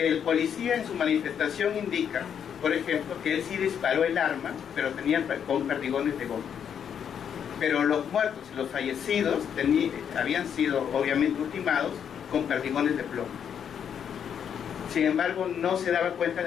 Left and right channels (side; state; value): right; quieter; 8.2 dB